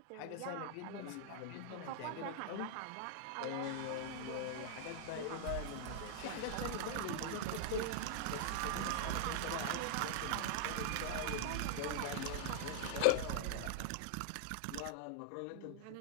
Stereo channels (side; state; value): both; different; correlation -0.01